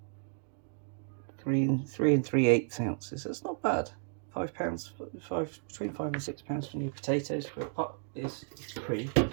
3 and 3/8 ounces. That's not bad. 5 pounds, between 5 and 6 pounds for new potatoes for a pot is pretty good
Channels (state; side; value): silent; left; digital silence